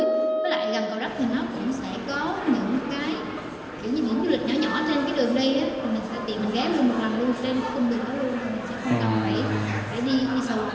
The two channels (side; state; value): both; identical; correlation 1.00